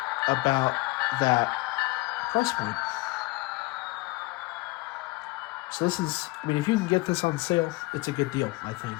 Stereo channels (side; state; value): right; quieter; 22.1 dB